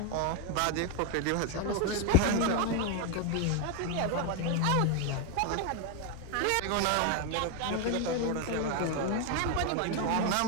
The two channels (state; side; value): different; both; correlation 0.01